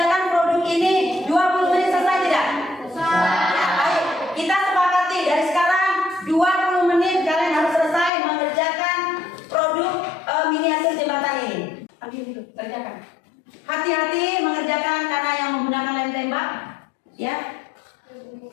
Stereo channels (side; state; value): right; drops out; at 8.1 s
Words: Kerjakan. Hati-hati mengerjakan karena yang menggunakan lem tembak, ya.